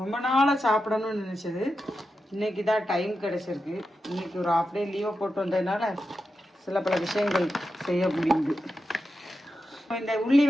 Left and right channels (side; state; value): both; normal; correlation 0.89